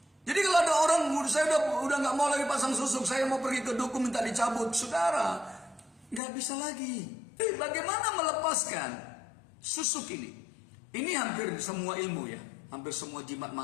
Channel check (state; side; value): drops out; right; at 6.2 s